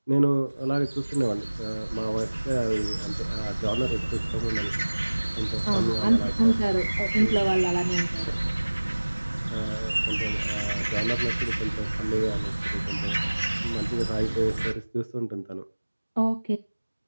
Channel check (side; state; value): both; inverted; correlation -1.00